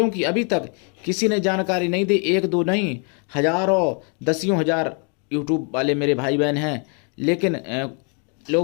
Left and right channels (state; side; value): quieter; right; 38.0 dB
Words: अभी तक किसी ने जानकारी नहीं दी। एक दो नहीं, हजारों दसियों हजार यूट्यूब वाले मेरे भाई बहन हैं, लेकिन